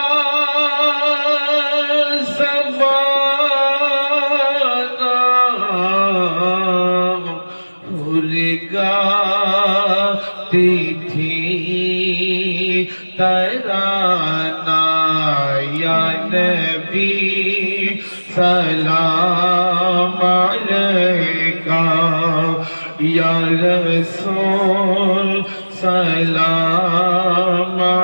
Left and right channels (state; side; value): inverted; both; correlation -1.00